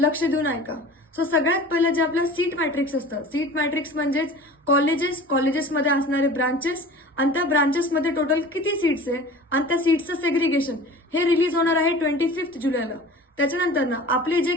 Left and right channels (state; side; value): normal; both; correlation 0.40